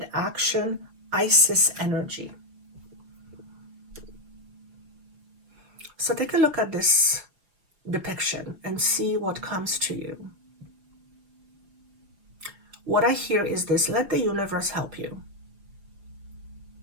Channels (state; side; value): late; left; 5.4 ms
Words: action, Isis energy. So take a look at this depiction and see what comes to you. What I hear is this: let the universe help you.